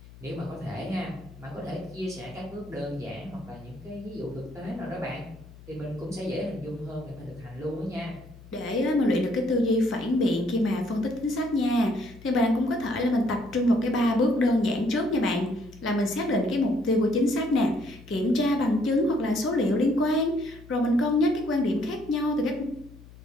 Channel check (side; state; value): left; noise; hum, 20 dB below the sound